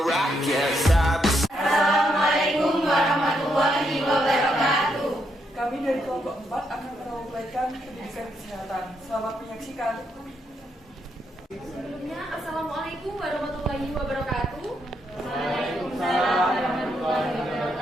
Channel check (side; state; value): both; normal; correlation 0.78